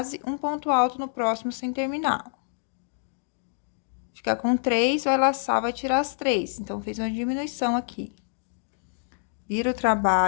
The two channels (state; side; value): silent; right; digital silence